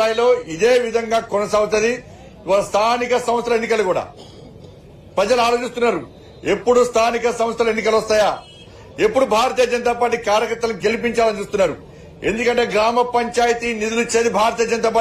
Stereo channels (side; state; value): both; identical; correlation 1.00